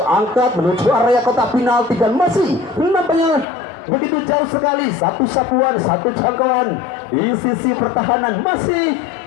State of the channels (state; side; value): drops out; right; at 3.5 s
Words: angkat menuju area kotak penalti dan masih nampaknya begitu jauh sekali. Satu sapuan, satu jangkauan di sisi pertahanan masih